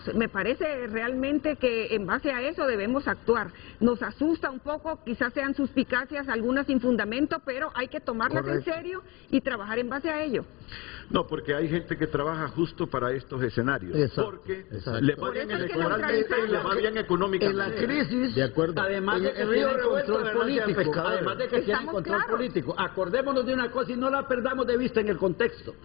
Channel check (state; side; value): quieter; right; 24.3 dB